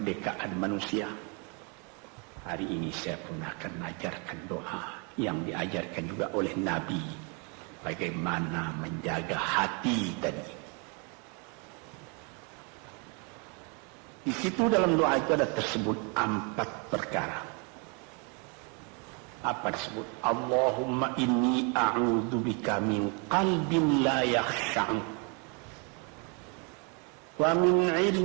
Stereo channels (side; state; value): left; quieter; 34.6 dB